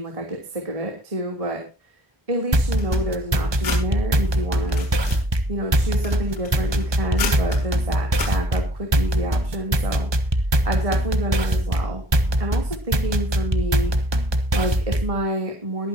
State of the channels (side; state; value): left; late; 1.2 ms